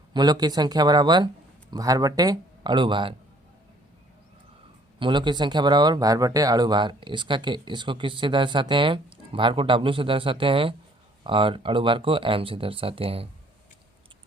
मूलों की संख्या बराबर भार बटे अणु भार। मूलों की संख्या बराबर भार बटे अणु भार। इसको किससे दर्शाते हैं? भार को W से दर्शाते हैं और अणु भार को M से दर्शाते हैं।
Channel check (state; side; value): normal; both; correlation 0.59